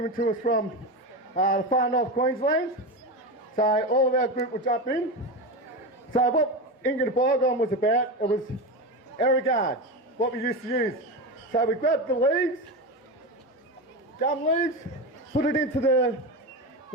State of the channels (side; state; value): both; normal; correlation 0.20